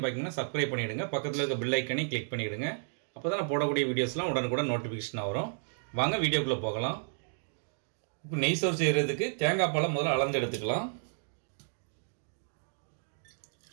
பார்த்தீங்கன்னா சப்ஸ்கிரைப் பண்ணிவிடுங்க. பக்கத்தில் இருக்க பெல் ஐக்கனை கிளிக் பண்ணிவிடுங்க. அப்போ தான் நான் போடக்கூடிய வீடியோஸ்லாம் உடனுக்குடன் நோட்டிஃபிகேஷன் வரும். வாங்க வீடியோக்குள்ளே போகலாம். இப்போ நெய் சோறு செய்கிறதுக்கு தேங்காய் பாலை முதல்ல அளந்து எடுத்துக்கலாம்.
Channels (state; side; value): silent; left; digital silence